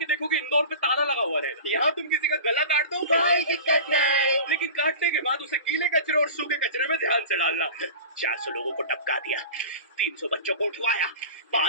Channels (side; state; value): both; inverted; correlation -0.34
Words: देखोगे इंदौर पे ताला लगा हुआ रहेगा। यहाँ तुम किसी का गला काट दो कोई दिक्कत नहीं, लेकिन काटने के बाद उसे गीले कचरे और सूखे कचरे में ध्यान से डालना। 400 लोगों को टपका दिया, 300 बच्चों को उठवाया,